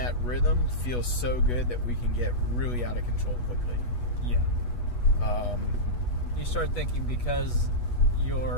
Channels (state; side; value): late; right; 8.2 ms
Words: rhythm feels so good that we can get really out of control quickly. Yeah. You start thinking because